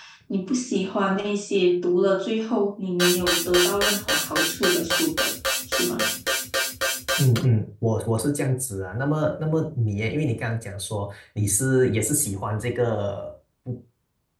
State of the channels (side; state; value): both; identical; correlation 1.00